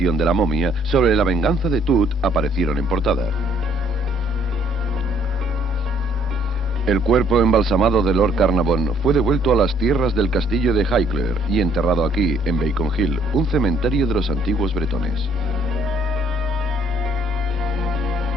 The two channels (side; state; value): left; noise; rumble, 22 dB below the sound